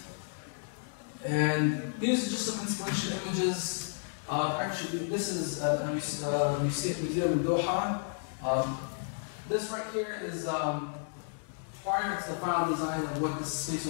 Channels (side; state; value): right; silent; digital silence